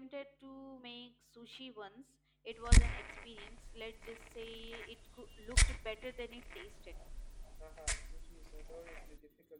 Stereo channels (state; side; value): identical; both; correlation 1.00